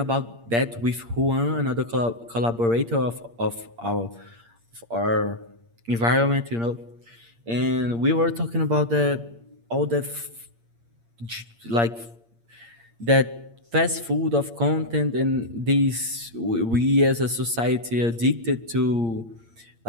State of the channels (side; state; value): left; late; 8.7 ms